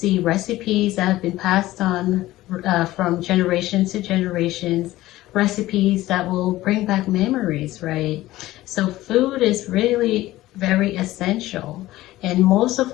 recipes that have been passed on from generation to generations, recipes that will bring back memories, right? So food is really very essential. And most of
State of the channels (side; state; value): right; quieter; 16.5 dB